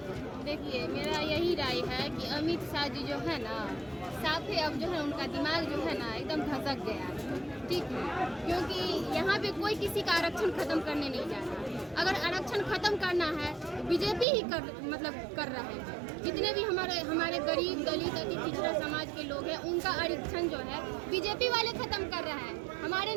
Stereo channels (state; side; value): drops out; left; at 14.2 s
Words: देखिए, मेरा यही राय है कि अमित शाह जी जो है ना, साफ ही अब जो है उनका दिमाग जो है ना एकदम धसक गया है, ठीक है। क्योंकि यहाँ पे कोई किसी का आरक्षण खत्म करने नहीं जा रहा। अगर आरक्षण खत्म करना है तो बीजेपी ही कर रहे हैं। जितने भी हमारे गरीब दलित अति पिछड़ा समाज के लोग हैं, उनका आरक्षण जो है बीजेपी वाले खत्म कर रहे हैं। हमारे